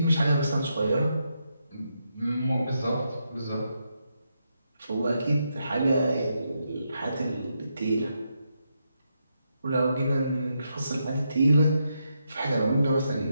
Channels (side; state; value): both; inverted; correlation -0.82